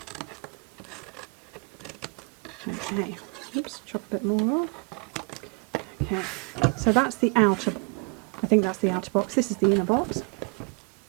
Okay, oops, chop a bit more off. Okay, so that's the outer, I think that's the outer box. This is the inner box.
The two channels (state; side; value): quieter; left; 35.1 dB